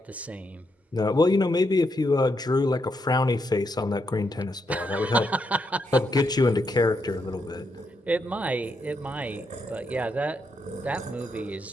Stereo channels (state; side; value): normal; both; correlation 0.80